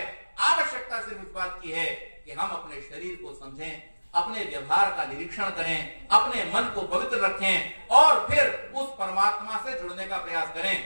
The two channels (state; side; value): inverted; both; correlation -1.00